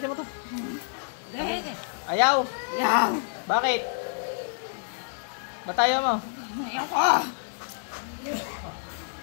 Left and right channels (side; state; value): right; silent; 59 dB below the other